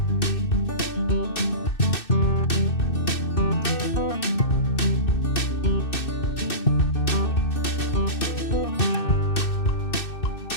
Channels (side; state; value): right; late; 2.6 ms